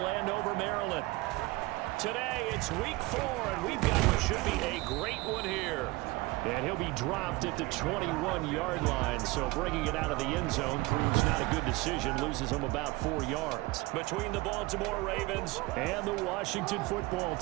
Landover, Maryland. Today, it's Week 4, and we've got what should be a great one here. And he'll be dropped at the 21-yard line, so bringing it out of the end zone proves not a good decision, loses him about 4 yards. Between the Baltimore Ravens and the Washington football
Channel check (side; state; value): left; quieter; 21.6 dB